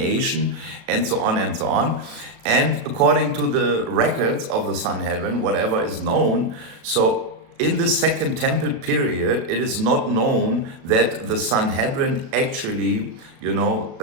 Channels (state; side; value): late; left; 36 ms